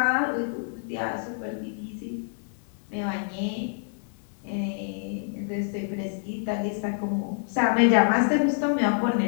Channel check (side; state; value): right; silent; 60 dB below the other